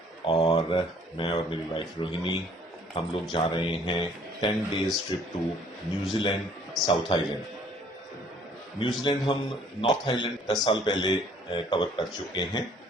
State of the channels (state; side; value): normal; both; correlation 0.58